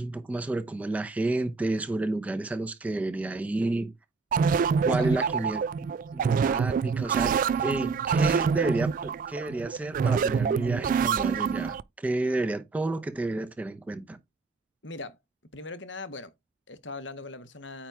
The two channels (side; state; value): left; quieter; 4.2 dB